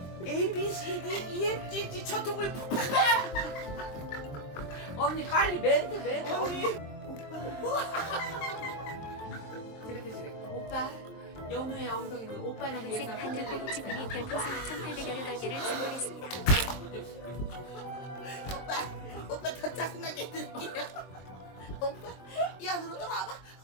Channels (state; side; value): late; right; 23 ms